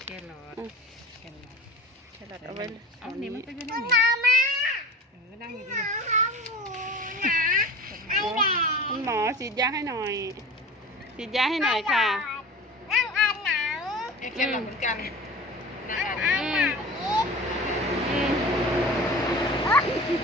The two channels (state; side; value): normal; both; correlation 0.36